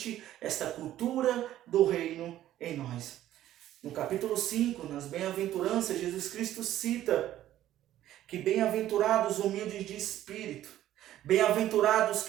esta cultura do reino em nós. No capítulo 5, nas bem-aventuranças, Jesus Cristo cita que bem-aventurados humildes de espírito, bem-aventurados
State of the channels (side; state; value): left; quieter; 13.0 dB